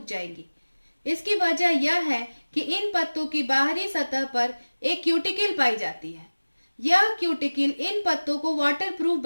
जाएंगी। इसकी वजह यह है कि इन पत्तों की बाहरी सतह पर एक क्यूटिकल पाई जाती है। यह क्यूटिकल इन पत्तों को वाटर प्रूफ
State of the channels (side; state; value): both; inverted; correlation -1.00